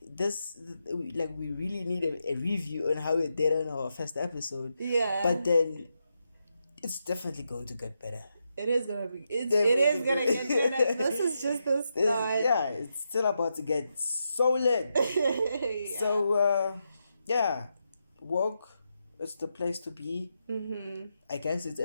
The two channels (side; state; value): both; inverted; correlation -0.85